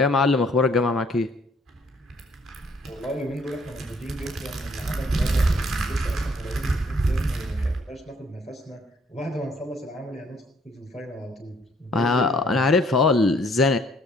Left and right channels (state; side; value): normal; both; correlation 0.64